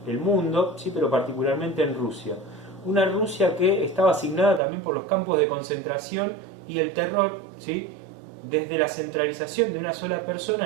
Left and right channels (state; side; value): drops out; left; at 4.6 s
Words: el mundo, sí, pero particularmente en Rusia. Una Rusia que estaba asignada también por los campos de concentración y el terror, ¿sí?, desde la centralización de una sola persona